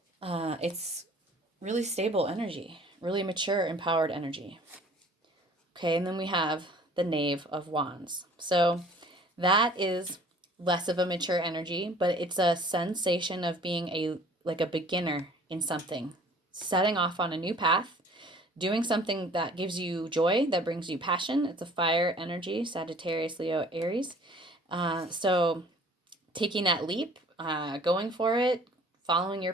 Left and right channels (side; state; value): both; normal; correlation 0.51